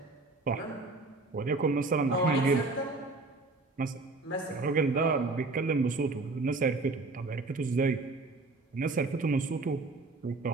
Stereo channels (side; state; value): left; quieter; 3.4 dB